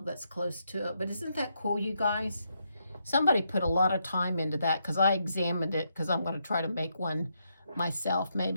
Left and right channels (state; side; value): inverted; both; correlation -0.79